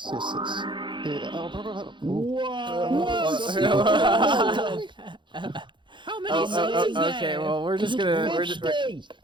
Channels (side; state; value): left; late; 0.23 ms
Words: Yeah, I'll probably have... How many subs is that? Okay, well we're just gonna